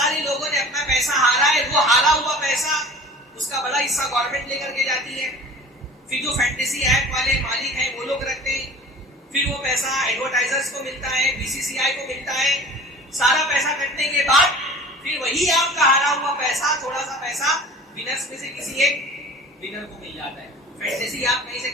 لوگوں نے اپنا پیسہ ہارا ہے. وہ ہارا ہوا پیسہ اس کا بڑا حصہ گورنمنٹ لے کر کے جاتی ہے. پھر جو فینٹیسی ایپ والے مالک ہیں وہ لوگ رکھتے ہیں. پھر وہ پیسہ ایڈورٹائزرز کو ملتا ہے، BCCI کو ملتا ہے. سارا پیسہ کٹنے کے بعد پھر وہی آپ کا ہارا ہوا پیسہ، تھوڑا سا پیسہ ونرز میں سے کسی ایک ونر کو مل جاتا ہے. فینٹیسی آپ کہیں سے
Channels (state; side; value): normal; both; correlation 0.42